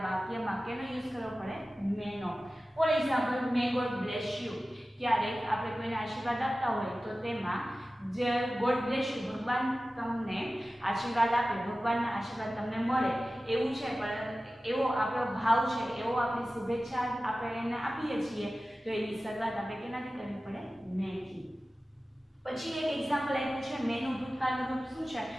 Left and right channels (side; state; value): both; normal; correlation 0.96